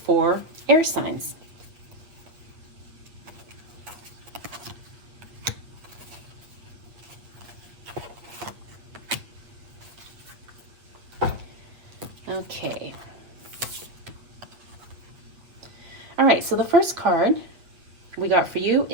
air signs. Okay. All right, so the first card we got for you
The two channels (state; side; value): late; left; 8.2 ms